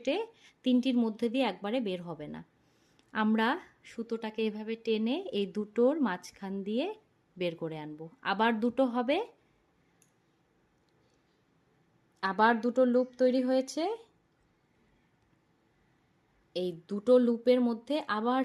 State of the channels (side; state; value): both; identical; correlation 1.00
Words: 3টির মধ্যে দিয়ে একবারে বের হবে না। আমরা সুতোটাকে এভাবে টেনে এই দুটোর মাঝখান দিয়ে বের করে আনব। আবার দুটো হবে, আবার দুটো লুপ তৈরি হয়েছে। এই দুটো লুপের মধ্যে আবার